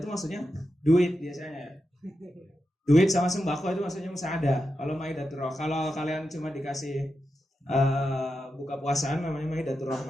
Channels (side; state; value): both; normal; correlation 0.88